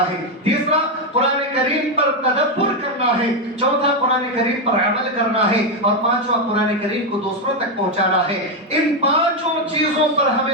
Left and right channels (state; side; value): normal; both; correlation 0.06